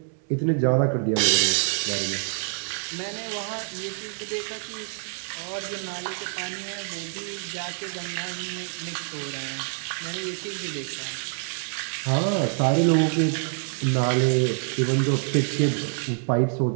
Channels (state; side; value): silent; left; 61 dB below the other